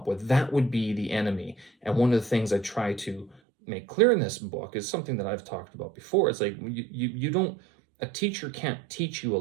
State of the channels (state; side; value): drops out; left; at 3.4 s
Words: with. That would be the enemy. And one of the things I try to make clear in this book is something that I've talked about before. It's like, you don't, a teacher can't teach you a